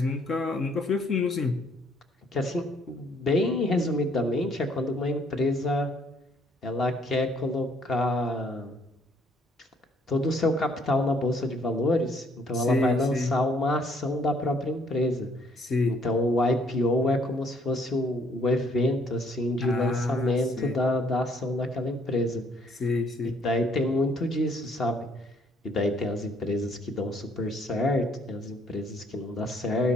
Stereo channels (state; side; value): normal; both; correlation 0.65